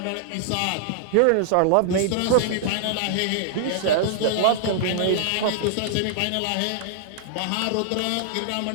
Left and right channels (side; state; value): both; different; correlation -0.01